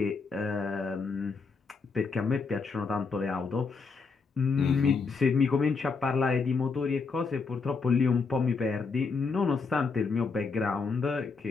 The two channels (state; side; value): quieter; right; 4.7 dB